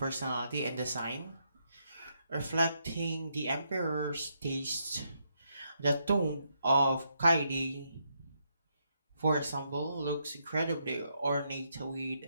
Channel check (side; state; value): both; inverted; correlation -0.78